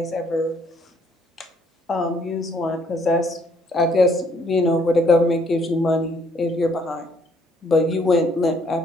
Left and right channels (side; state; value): both; normal; correlation 0.66